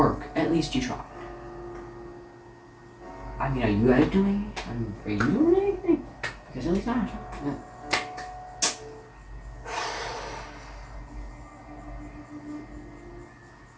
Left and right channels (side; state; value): both; identical; correlation 1.00